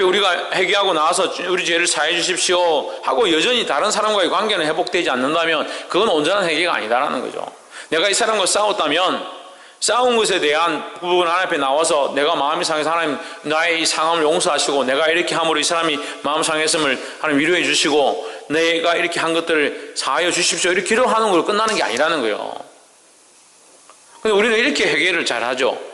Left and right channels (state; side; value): identical; both; correlation 1.00